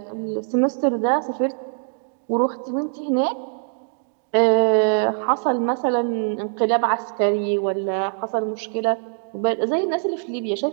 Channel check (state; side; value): silent; left; digital silence